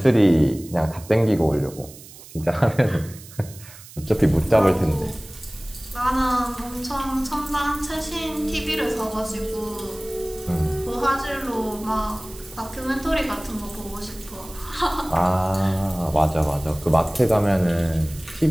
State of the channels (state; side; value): noise; right; hiss, 18 dB below the sound